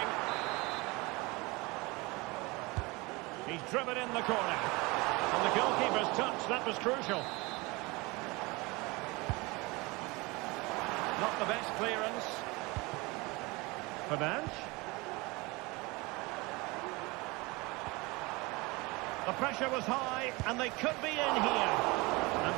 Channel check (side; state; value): left; quieter; 24.5 dB